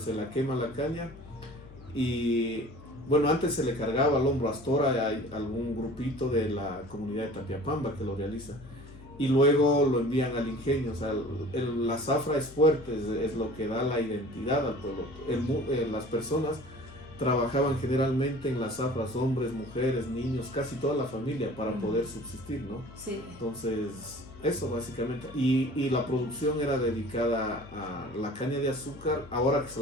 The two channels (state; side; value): noise; left; hum, 19 dB below the sound